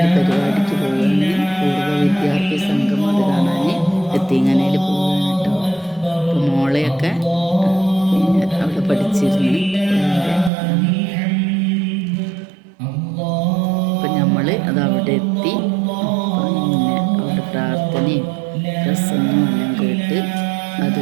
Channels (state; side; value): drops out; left; at 10.5 s